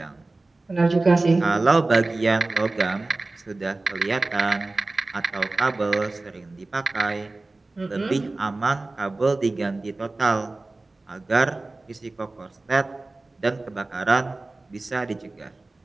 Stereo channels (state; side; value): quieter; left; 3.2 dB